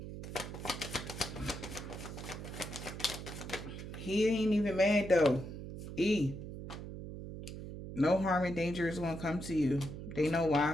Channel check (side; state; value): right; noise; hum, 9 dB below the sound